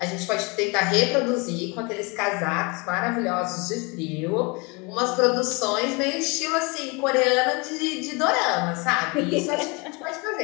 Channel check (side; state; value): right; quieter; 28.8 dB